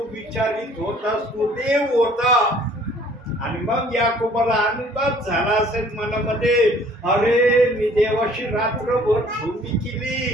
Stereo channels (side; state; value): both; normal; correlation 0.56